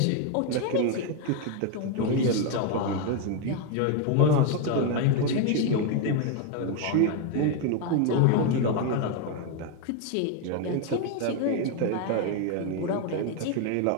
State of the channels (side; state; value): both; different; correlation 0.01